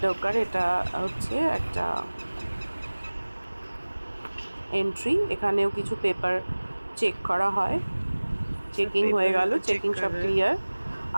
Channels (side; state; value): both; inverted; correlation -1.00